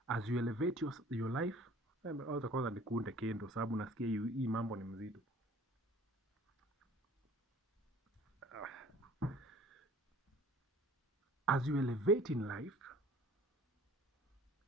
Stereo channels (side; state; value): both; normal; correlation 0.50